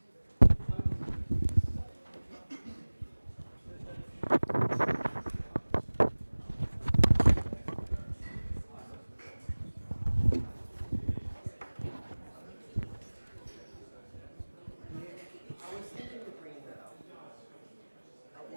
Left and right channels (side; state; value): both; inverted; correlation -1.00